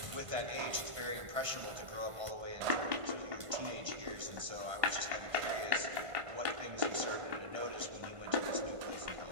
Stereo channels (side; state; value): left; late; 1.4 ms